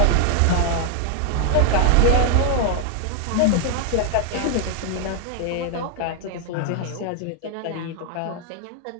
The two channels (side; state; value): both; different; correlation 0.00